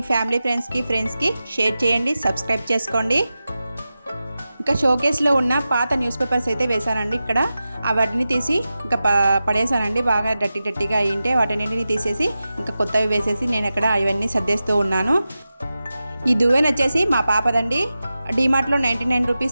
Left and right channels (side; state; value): both; inverted; correlation -0.93